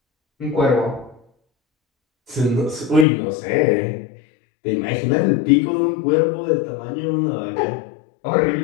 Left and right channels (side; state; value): right; drops out; at 3.1 s